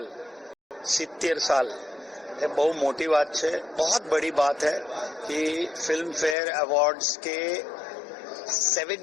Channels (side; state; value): right; drops out; at 6.4 s